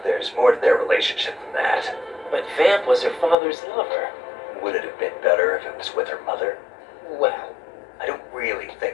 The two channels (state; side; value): drops out; right; at 3.4 s